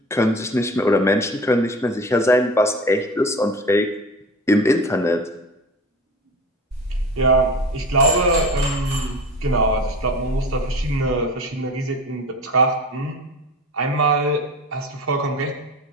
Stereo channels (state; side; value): normal; both; correlation 0.35